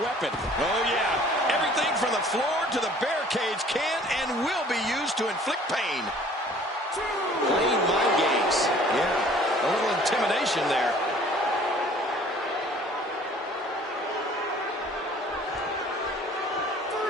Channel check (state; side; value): normal; both; correlation 0.52